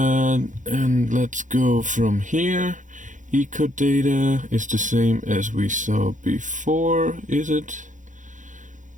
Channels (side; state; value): left; late; 0.37 ms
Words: let's go from here. Eco data is the same as we saw before, is it?